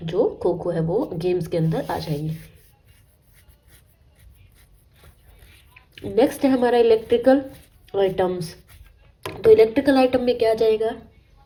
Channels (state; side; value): identical; both; correlation 1.00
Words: जो खो खो है वो गेम्स के अंदर आ जाएंगे। नेक्स्ट है हमारा इलेक्ट्रिकल आइटम्स। तो इलेक्ट्रिकल आइटम में क्या आ जाएगा,